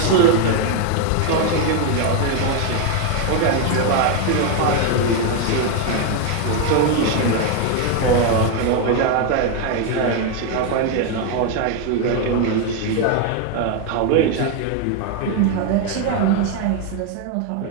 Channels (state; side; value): different; both; correlation 0.01